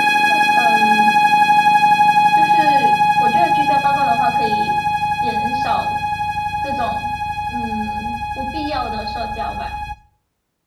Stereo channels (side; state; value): both; identical; correlation 1.00